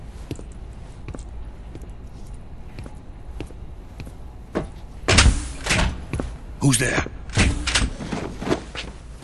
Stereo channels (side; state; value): both; identical; correlation 1.00